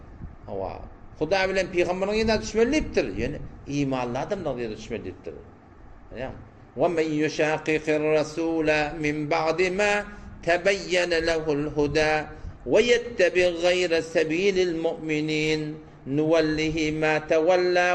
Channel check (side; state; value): both; identical; correlation 1.00